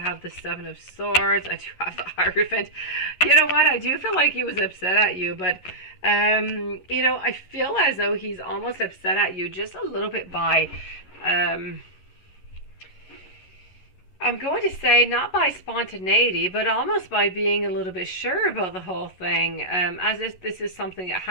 the 7 of Swords. I do have the Hierophant. You know what? I do feel like he was upset at you, but, you know, I feel as though he's almost upset at you just a little bit by, I'm going to say not by spontaneity, but almost by being a little bit sure about the whole thing, as if this is something that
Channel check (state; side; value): late; right; 11 ms